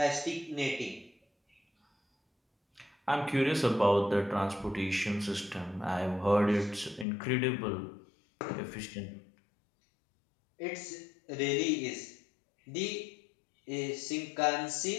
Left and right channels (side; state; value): right; drops out; at 7.1 s